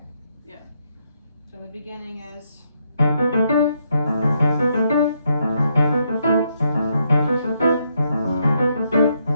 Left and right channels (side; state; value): both; inverted; correlation -0.77